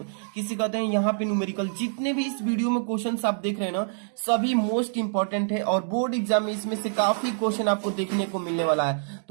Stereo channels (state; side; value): silent; left; digital silence